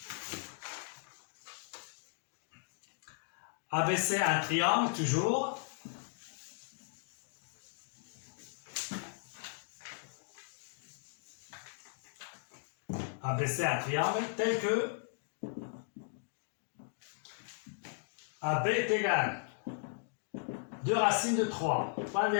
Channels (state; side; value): silent; right; digital silence